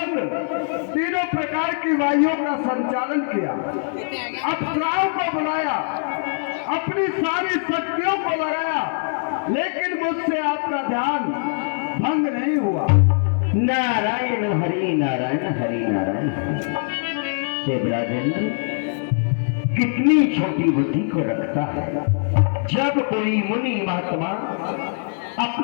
तीनों प्रकार की वायुओं का संचालन किया, अप्सराओं को बुलाया, अपनी सारी शक्तियों को लगाया, लेकिन मुझसे आपका ध्यान भंग नहीं हुआ। नारायण हरि नारायण हरि नारायण। देवराजेंद्र कितनी छोटी बुद्धि को रखता है। जब कोई मुनि महात्मा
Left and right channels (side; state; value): right; silent; digital silence